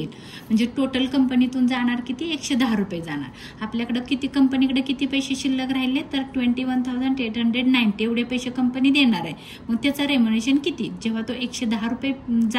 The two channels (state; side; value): identical; both; correlation 1.00